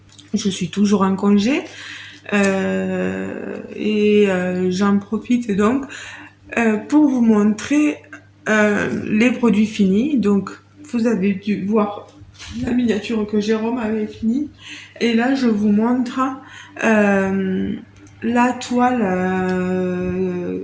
je suis toujours en congé j'en profite donc pour vous montrer les produits finis. Donc vous avez dû voir la miniature que Jérôme avait finie. Et là, je vous montre euh, la toile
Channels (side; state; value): both; identical; correlation 1.00